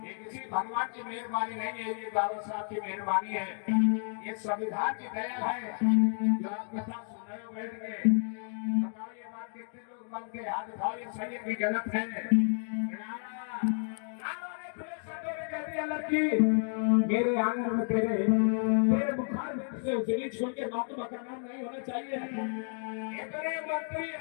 ये किसी भगवान की मेहरबानी नहीं है, ये बाबा साहब की मेहरबानी है, ये संविधान की दया है जो आप कथा सुन रहे हो बैठ के। बताओ ये बात कितने लोग मन के हाथ उठाओ, ये सही है कि गलत है? लड़की मेरे आंगन में तेरे बुखार में से उजली छोड़ के महात्मा का नाम नहीं होना चाहिए। इतने मंत्री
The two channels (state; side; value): silent; right; 57 dB below the other